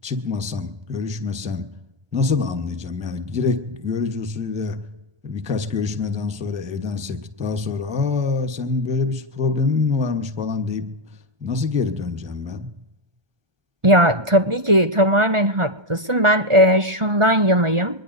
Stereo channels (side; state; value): left; late; 1.4 ms